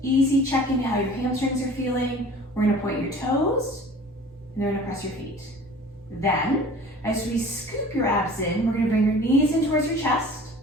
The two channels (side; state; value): both; normal; correlation 0.45